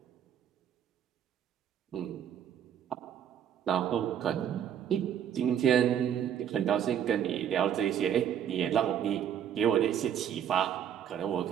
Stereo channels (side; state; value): left; quieter; 9.3 dB